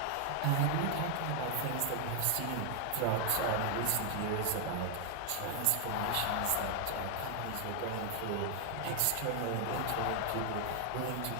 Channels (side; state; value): both; different; correlation 0.00